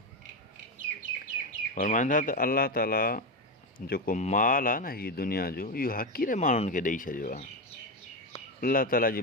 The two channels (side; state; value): both; normal; correlation 0.13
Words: फ़रमाइनि था त अलाह ताला जेको माल आहे न हीअ दुनिया जो, इहो हक़ीर माण्हुनि खे ॾेई छॾियो आहे। अलाह ताला जी